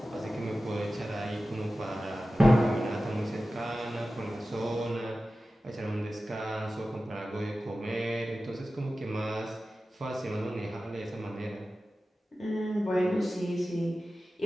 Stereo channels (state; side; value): normal; both; correlation 0.94